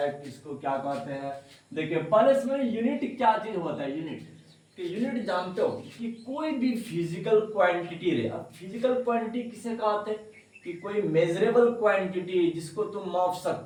किसको क्या कहते हैं। देखिए पहले इसमें यूनिट क्या चीज होता है। यूनिट जानते हो कि कोई भी फिजिकल क्वांटिटी रे। अब फिजिकल क्वांटिटी किसे कहते हैं कि कोई मेजरेबल क्वांटिटी जिसको तुम माप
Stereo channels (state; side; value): identical; both; correlation 1.00